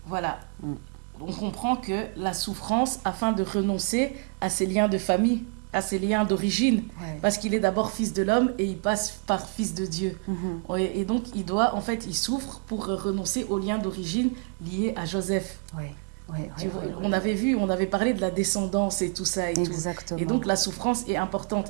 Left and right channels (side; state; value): left; quieter; 39.9 dB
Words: Voilà. On comprend que la souffrance afin de renoncer à ses liens de famille, à ses liens d'origine, parce qu'il est d'abord fils de l'homme et il passe par fils de Dieu. Et donc, il souffre pour renoncer aux liens d'origine liés à Joseph. On avait parlé de la descendance et tout ça et Exactement. tout. Et donc, la souffrance est importante.